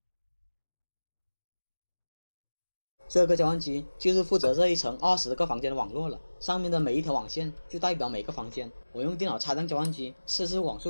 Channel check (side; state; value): both; inverted; correlation -1.00